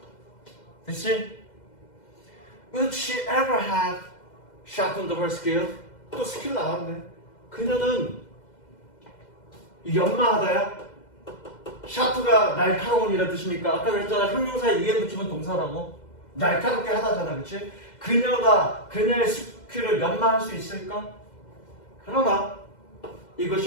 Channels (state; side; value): late; right; 2.0 ms